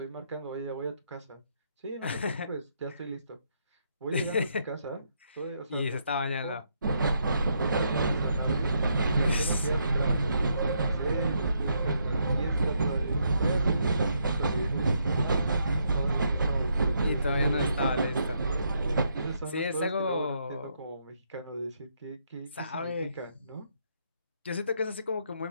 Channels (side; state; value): both; inverted; correlation -0.76